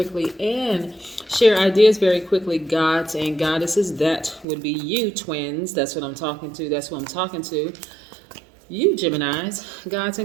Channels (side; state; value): left; drops out; at 4.5 s